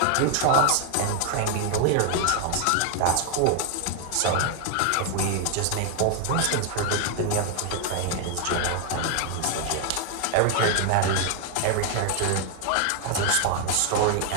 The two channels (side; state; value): both; different; correlation 0.00